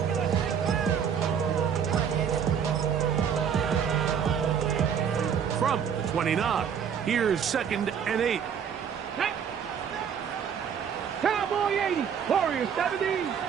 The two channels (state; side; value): quieter; left; 7.7 dB